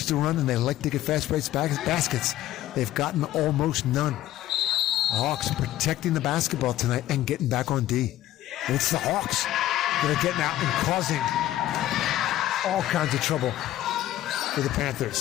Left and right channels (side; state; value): right; quieter; 14.0 dB